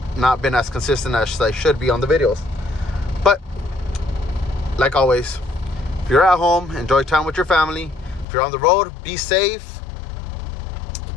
not been as consistent as I should be on the videos. But like always, if you're at home, enjoy time with your family. If you're on the road, be safe.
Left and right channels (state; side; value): drops out; right; at 8.2 s